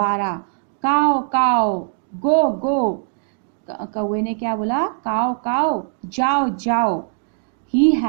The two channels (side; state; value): left; silent; digital silence